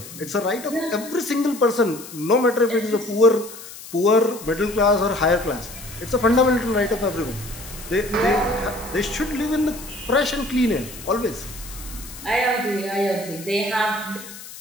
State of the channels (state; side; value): noise; left; hiss, 15 dB below the sound